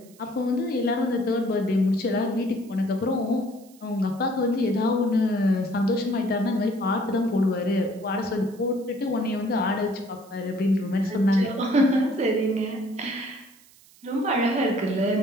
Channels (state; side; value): noise; right; hiss, 26 dB below the sound